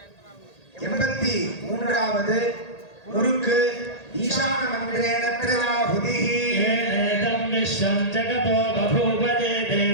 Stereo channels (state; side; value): late; right; 1.8 ms